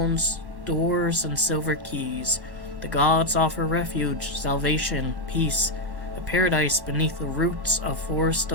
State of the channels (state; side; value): late; left; 1.1 ms